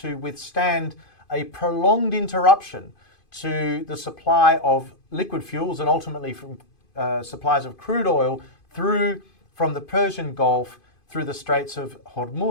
withstand a prolonged interruption to the supply of liquid fuels and ultimately from supplies of crude oil from the Persian Gulf through the Straits of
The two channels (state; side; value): late; right; 2.5 ms